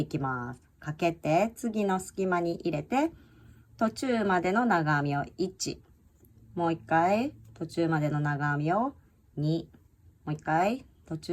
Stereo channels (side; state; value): both; identical; correlation 1.00